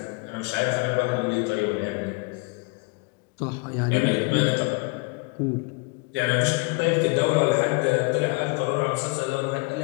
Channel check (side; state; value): right; quieter; 27.9 dB